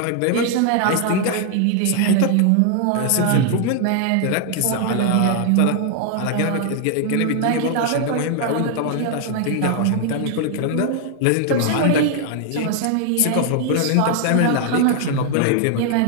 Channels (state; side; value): different; both; correlation 0.00